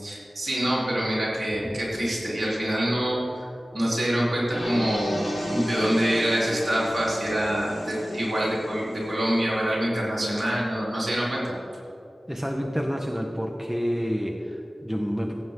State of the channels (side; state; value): both; normal; correlation 0.96